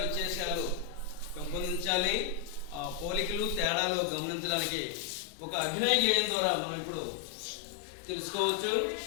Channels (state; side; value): drops out; right; at 3.7 s